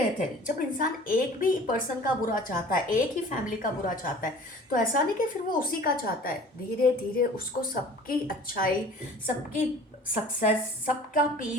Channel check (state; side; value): normal; both; correlation 0.46